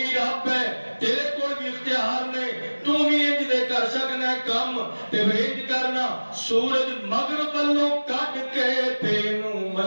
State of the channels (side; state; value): both; inverted; correlation -1.00